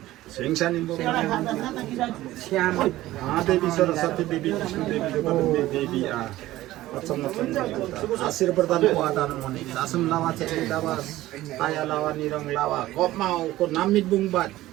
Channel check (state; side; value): quieter; left; 15.9 dB